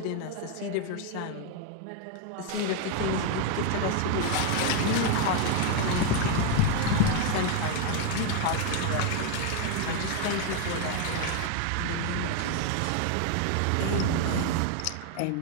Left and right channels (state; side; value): different; both; correlation 0.01